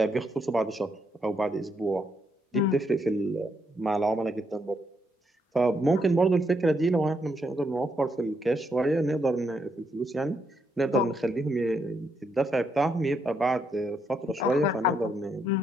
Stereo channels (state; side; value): normal; both; correlation 0.77